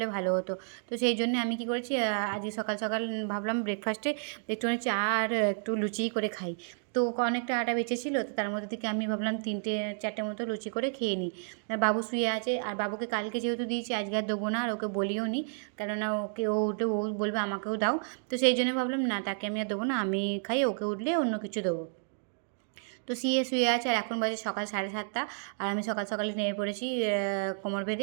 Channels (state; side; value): silent; left; digital silence